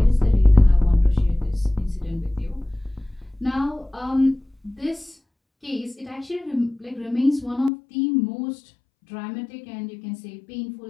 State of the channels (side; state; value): right; drops out; at 7.7 s